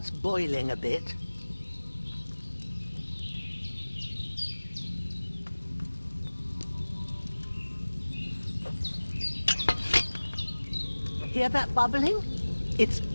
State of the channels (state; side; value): inverted; both; correlation -1.00